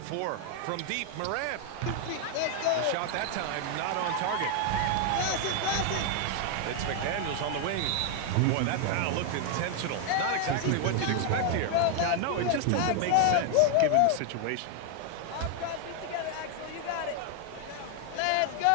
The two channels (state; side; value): different; both; correlation 0.00